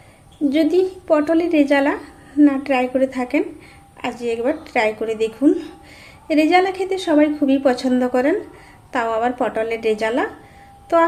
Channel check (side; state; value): both; identical; correlation 1.00